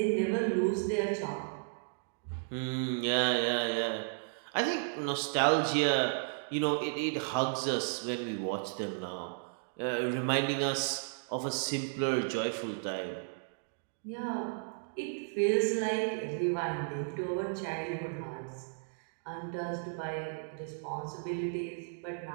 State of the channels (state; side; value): silent; left; digital silence